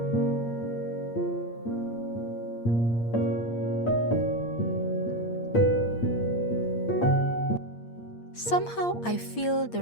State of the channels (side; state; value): right; late; 8.6 ms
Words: Somehow I feel the